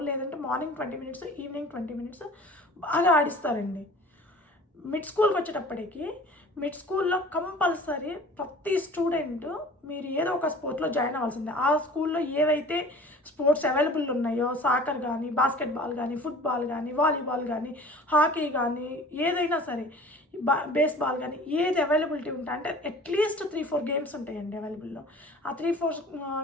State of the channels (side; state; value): both; normal; correlation 0.45